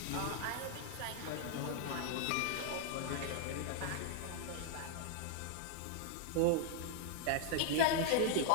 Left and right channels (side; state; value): both; different; correlation 0.00